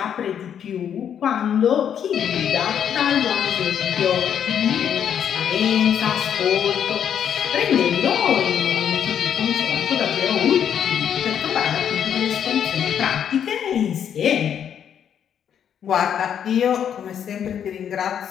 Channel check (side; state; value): right; quieter; 8.7 dB